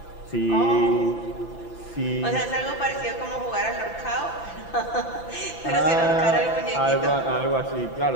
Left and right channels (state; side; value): late; right; 5.9 ms